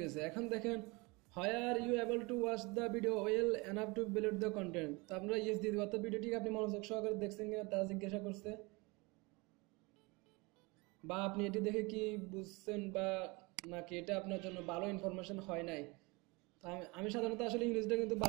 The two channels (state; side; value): quieter; left; 26.3 dB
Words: গেছে। এখন দেখেন are you able to watch the video well enough to valid the content, তো আমরা ইয়েস দিয়ে দিব। অর্থাৎ ভিডিওটি আপনি মনোযোগ সহকারে দেখছেন কিনা তা জিজ্ঞাসা করছে, বা আপনি এটি দেখে কি বুঝছেন বা নাকি এটা আপনার জন্য ভালো ইনফরমেশন হয় নাই। তো আমি সাধারণত আসলে ইংরেজিটা কিন্তু